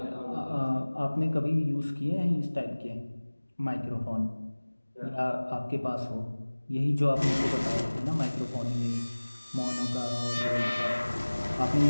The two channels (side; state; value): both; inverted; correlation -1.00